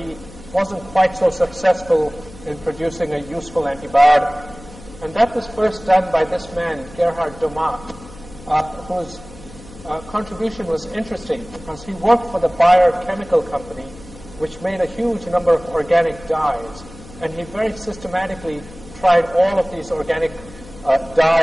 wasn't quite so successful in producing a useful antibiotic. And that was first done by this man, Gerhard Domat, whose contribution was interesting because he worked for the Bayer Chemical Company, which made a huge number of organic dyes. And he very systematically tried all of these organic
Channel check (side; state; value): left; noise; hum, 19 dB below the sound